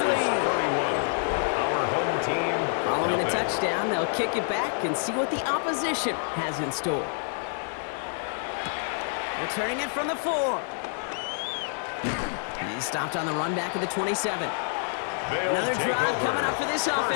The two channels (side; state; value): right; silent; 60 dB below the other